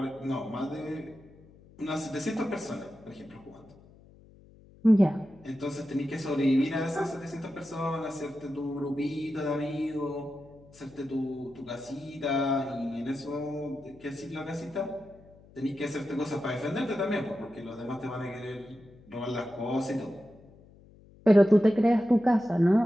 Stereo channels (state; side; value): noise; left; hum, 24 dB below the sound